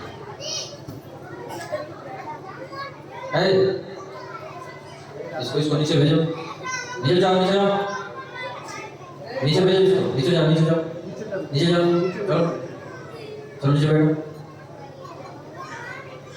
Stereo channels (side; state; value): both; identical; correlation 1.00